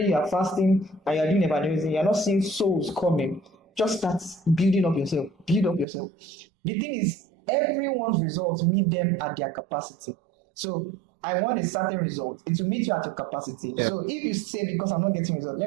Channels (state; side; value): drops out; left; at 5.9 s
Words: you are fasting, and you are doing evangelism, you are not seeing souls coming. Just start building up yourself, build up yourself. The thing is, everyone's results meet them at their capacity. So I want a certain result. It will meet you at your capacity. So if you say, because I'm not getting results,